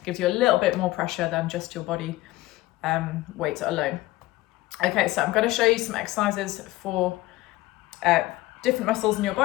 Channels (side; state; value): right; quieter; 18.3 dB